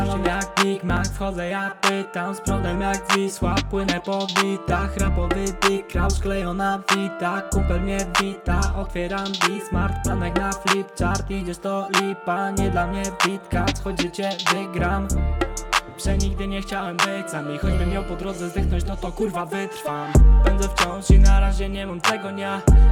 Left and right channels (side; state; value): both; identical; correlation 1.00